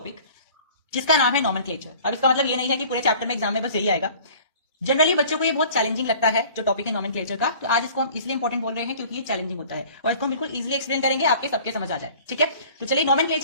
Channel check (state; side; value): inverted; both; correlation -0.47